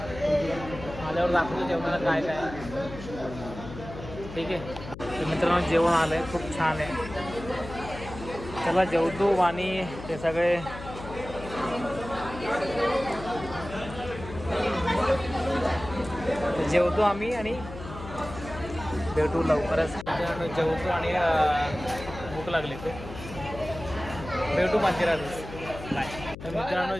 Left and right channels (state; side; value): noise; left; hum, 12 dB below the sound